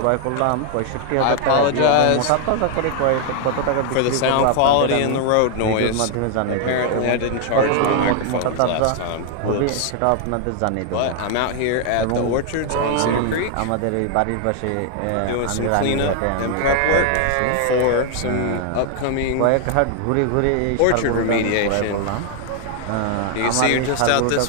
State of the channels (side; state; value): both; different; correlation 0.00